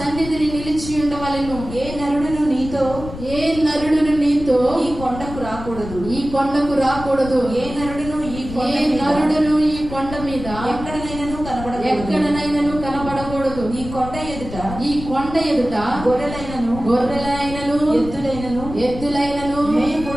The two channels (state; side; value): noise; left; rumble, 11 dB below the sound